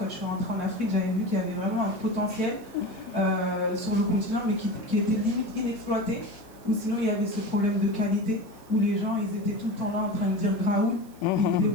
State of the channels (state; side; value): noise; right; hiss, 26 dB below the sound